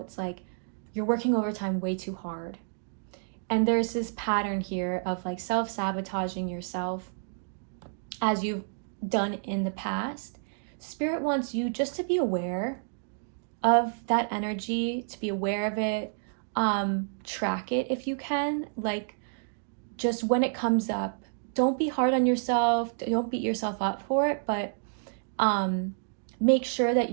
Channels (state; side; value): silent; left; digital silence